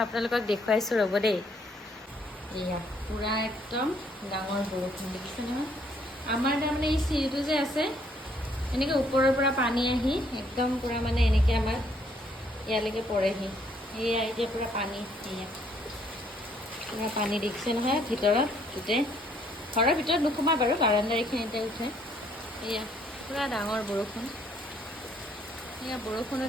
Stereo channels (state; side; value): normal; both; correlation 0.67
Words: আপোনালোকক দেখুৱাইছোঁ ৰ'ব দেই। এয়া পুৰা একদম ডাঙৰ বৰষুণ দেখিছে নহয়। আমাৰ তাৰমানে এই চিৰিটো যে আছে এনেকৈ ওপৰৰ পৰা পানী আহি একদম পুৰা মানে এনেকৈ আমাৰ ইয়ালৈকে পৰেহি। এয়া এতিয়া পুৰা পানী, এয়া পুৰা পানী দেখিছে নহয় ভিতৰত গোটেই। ঘৰৰ ভিতৰত নোসোমাই বাৰু, বাৰাণ্ডাৰ এইখিনিতে উঠে। এয়া পুৰা ডাঙৰ বৰষুণ, এয়া বৰষুণো